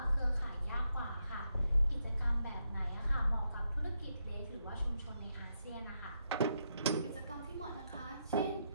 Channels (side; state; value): both; inverted; correlation -0.81